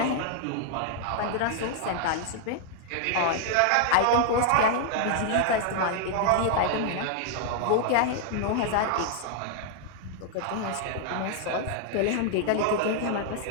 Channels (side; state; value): both; different; correlation 0.00